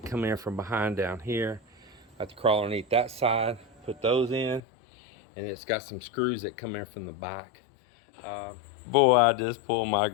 come in from behind down here. I have to crawl underneath that side, put those in, and it's got some screws that come in from the back. Boy, I just pulled my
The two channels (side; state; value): right; drops out; at 4.6 s